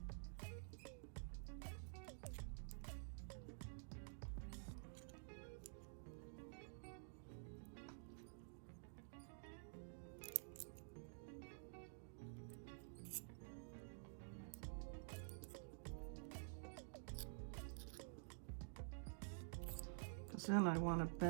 Because then I want to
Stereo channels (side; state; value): left; silent; digital silence